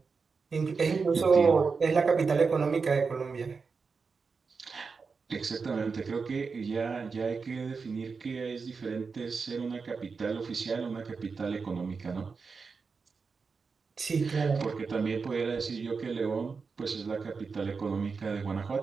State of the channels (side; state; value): left; quieter; 5.0 dB